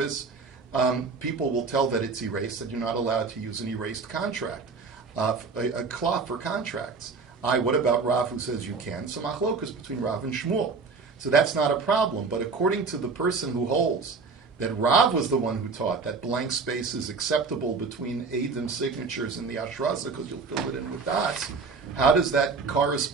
people will tell that it's erased, that you're not allowed to use an erased contract, a cloth for contracts. What about Rav who says you can? So machlokas between Rav and Shmuel. So that's not a problem. But according to the person who holds that Rav was the one who taught that blank space is acceptable between Eidim signatures and the Ashrasa because you'll fill it in with dots, how does that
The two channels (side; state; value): left; quieter; 4.5 dB